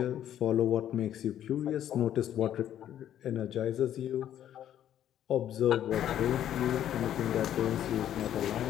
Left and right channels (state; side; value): quieter; right; 10.9 dB